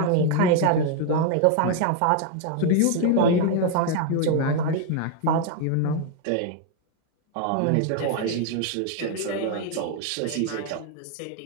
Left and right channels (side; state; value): both; different; correlation 0.00